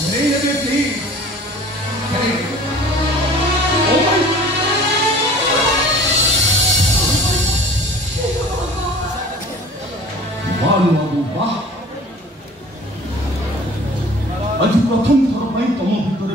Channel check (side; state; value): both; normal; correlation 0.46